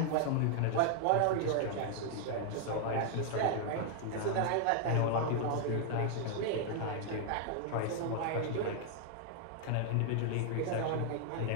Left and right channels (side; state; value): both; different; correlation 0.00